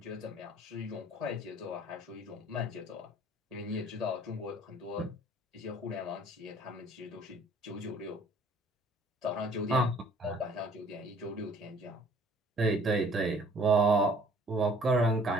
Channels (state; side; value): normal; both; correlation 0.55